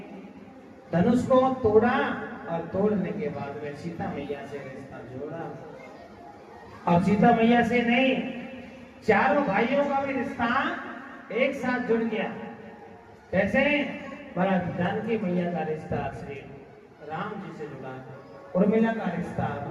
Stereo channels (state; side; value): identical; both; correlation 1.00